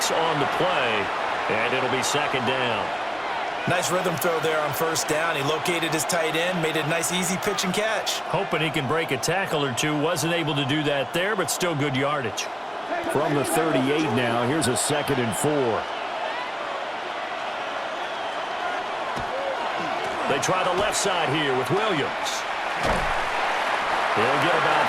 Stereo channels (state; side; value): identical; both; correlation 1.00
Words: on the play, and it'll be second down. Nice rhythm throw there on first down. He located his tight end, made it a nice easy pitch and catch. Hoping he can break a tackle or two. Wasn't able to do that there, but still good yardage. From the 38 now, here's a 2nd and 4. They try the left side here with Williams. He'll get about